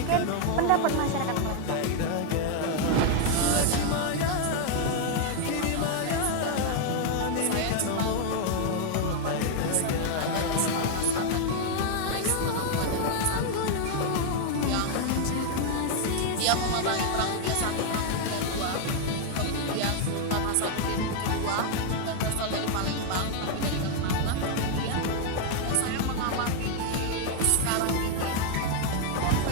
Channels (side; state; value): both; different; correlation 0.00